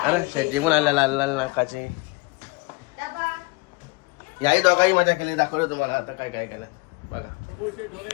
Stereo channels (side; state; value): right; quieter; 26.0 dB